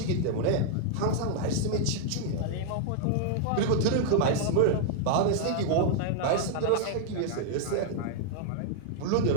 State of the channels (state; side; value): different; both; correlation -0.01